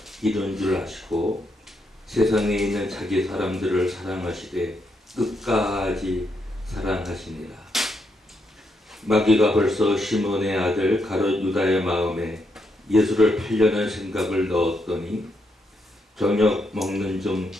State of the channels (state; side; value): normal; both; correlation 0.79